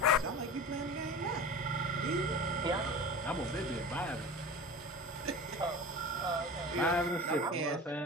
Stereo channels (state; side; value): normal; both; correlation 0.34